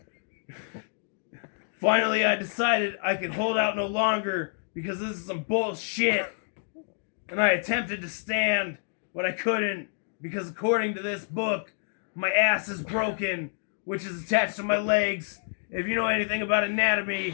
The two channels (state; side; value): silent; right; digital silence